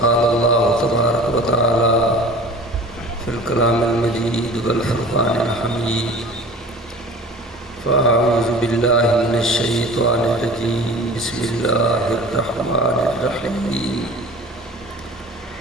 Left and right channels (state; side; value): normal; both; correlation 0.41